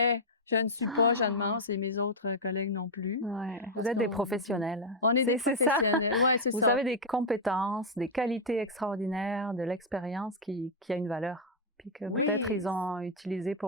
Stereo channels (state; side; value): normal; both; correlation -0.01